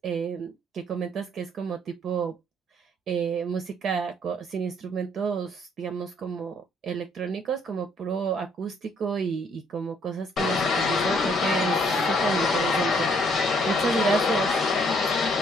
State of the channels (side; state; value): both; normal; correlation 0.66